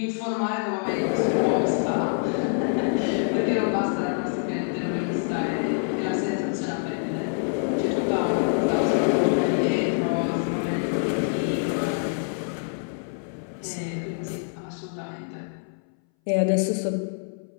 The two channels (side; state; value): right; silent; 61 dB below the other